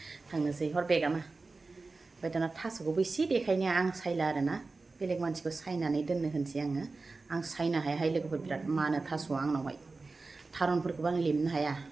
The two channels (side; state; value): left; quieter; 3.8 dB